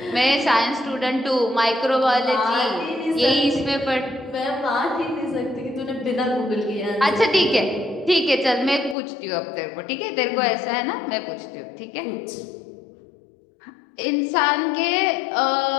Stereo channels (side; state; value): right; drops out; at 9.0 s